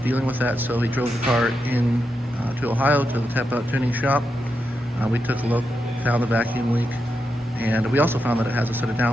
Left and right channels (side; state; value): both; normal; correlation 0.86